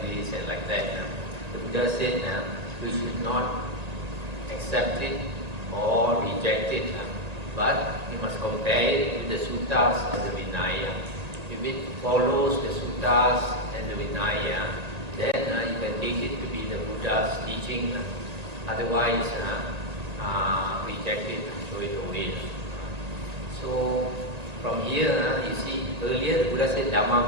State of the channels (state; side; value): late; left; 1.8 ms